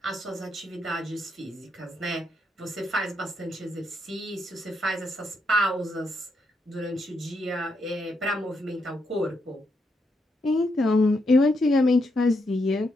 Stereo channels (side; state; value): both; normal; correlation 0.79